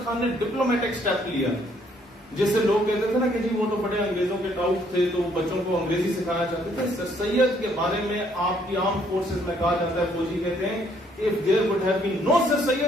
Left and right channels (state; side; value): normal; both; correlation 0.67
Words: خان نے ڈپلومیٹک سٹیپ لیا, جیسے لوگ کہتے تھے نا کہ جی وہ تو بڑے انگریزوں کے ٹاؤٹ تھے تو بچوں کو انگریزی سکھانا چاہتے تھے. سر سید کے بارے میں آپ کی عام فورسز میں کہا جاتا ہے, فوجی کہتے ہیں if there would have been no Sir